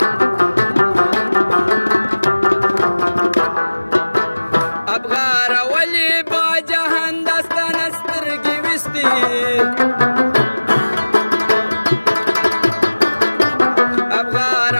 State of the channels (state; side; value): inverted; both; correlation -1.00